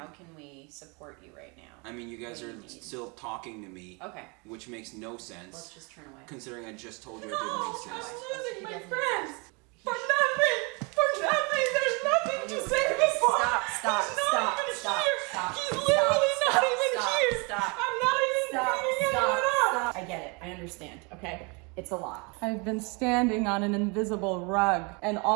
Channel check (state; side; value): quieter; left; 30.9 dB